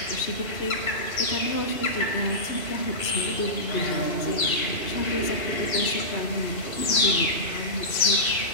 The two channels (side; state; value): right; late; 2.8 ms